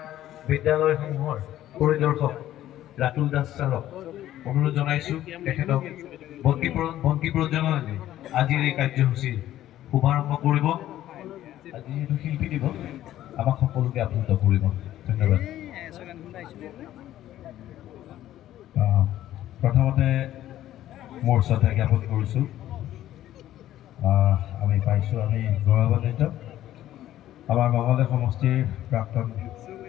বিদ্যালয়সমূহৰ পৰিদৰ্শক ৰাতুল দাস ছাৰক অনুৰোধ জনাইছোঁ তেখেতক বন্তি প্ৰজ্বলনেৰে আজিৰ এই কাৰ্যসূচীৰ শুভাৰম্ভ কৰিব। আজি যিহেতু শিল্পী দিৱস আমাক সকলোকে আপ্লুত কৰিব। ধন্যবাদ। প্ৰথমতে মোৰ শ্ৰদ্ধা জ্ঞাপন কৰিছোঁ। আমি পাইছোঁ, আমি গৌৰৱান্বিত। আমাৰ মঙলদৈ সমষ্টিৰ প্ৰাক্তন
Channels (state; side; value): quieter; right; 13.1 dB